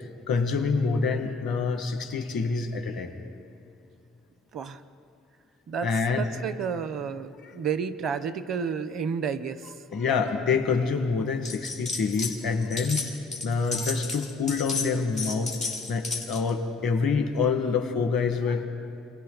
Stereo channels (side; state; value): right; quieter; 3.3 dB